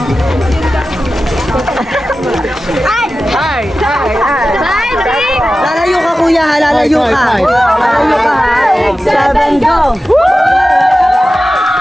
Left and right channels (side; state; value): both; normal; correlation 0.94